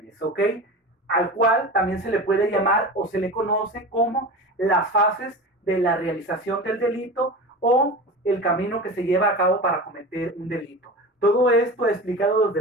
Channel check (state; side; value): normal; both; correlation 0.30